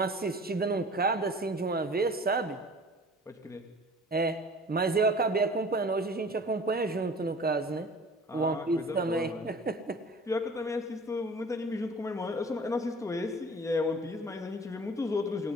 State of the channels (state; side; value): normal; both; correlation 0.45